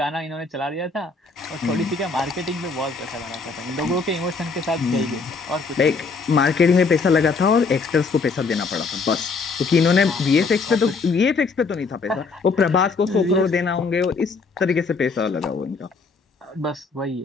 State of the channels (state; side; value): quieter; right; 4.4 dB